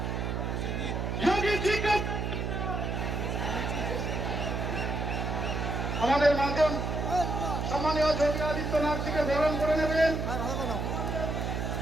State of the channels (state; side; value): noise; right; hum, 2 dB below the sound